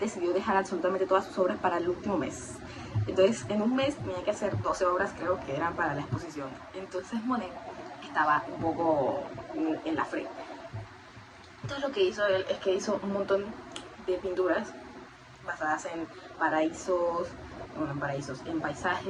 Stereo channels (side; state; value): both; identical; correlation 1.00